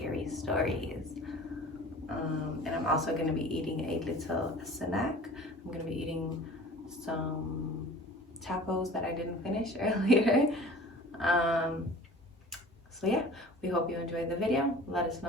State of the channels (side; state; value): both; normal; correlation 0.43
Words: stories. And I'm also going to be eating a little snack. I'm going to be eating some tacos that I didn't finish earlier. So yeah, we hope you enjoyed the video. Let us